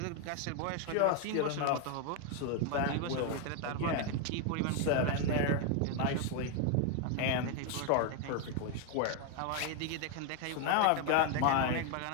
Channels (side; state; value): both; different; correlation 0.01